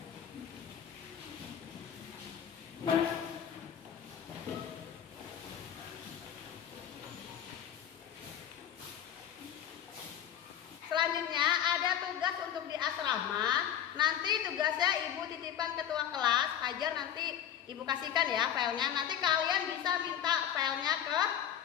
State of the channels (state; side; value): quieter; right; 10.1 dB